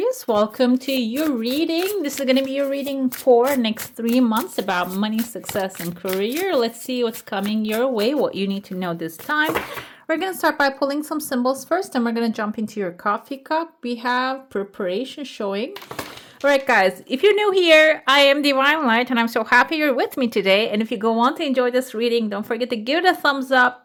Welcome to your reading. This is going to be your reading for next 3 months about money, success, and career. Let's see what's coming your way, what you need to know this time. We're going to start by pulling some symbols first, and we're going to jump into your coffee cup. We have preparation showing. All right, guys, if you're new here, I am Divine Light, and I'm so happy you're with me today. And if you go on to enjoy this reading, don't forget to give it a thumbs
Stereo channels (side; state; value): both; identical; correlation 1.00